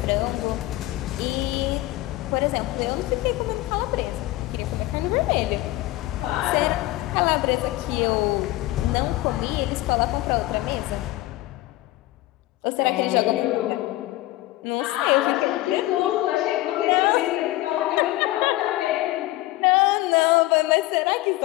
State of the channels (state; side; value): quieter; right; 17.7 dB